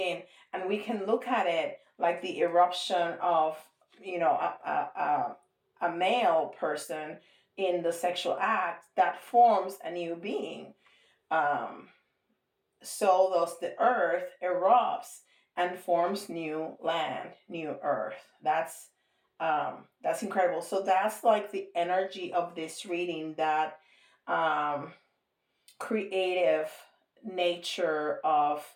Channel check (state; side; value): identical; both; correlation 1.00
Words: and we can look at it like the eruption of, a male person in the sexual act that forms a new being. um so thus the earth erupts and forms new land, new earth. That's incredible. So that's like the energy of this reading, that um creative nature of